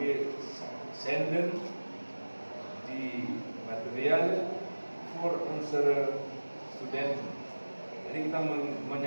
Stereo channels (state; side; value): inverted; both; correlation -1.00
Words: send di material for answer student. Jadi kita